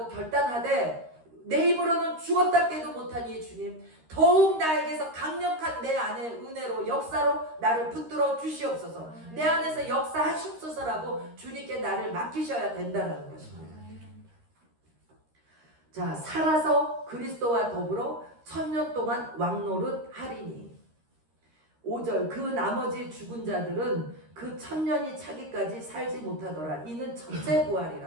결단하되, 내 입으로는 죽었다 깨도 못하니 주님 더욱 나에게서 강력한 내 안의 은혜로 역사로 나를 붙들어 주시옵소서. 내 안에서 역사하시옵소서라고 주님께 나를 맡기셔야 된다는 것입니다. 자, 살아서 그리스도와 더불어 1000년 동안 왕노릇 하리니. 5절 그 나머지 죽은 자들은 그 1000년이 차기까지 살지 못하더라. 이는 첫째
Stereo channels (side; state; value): left; late; 13 ms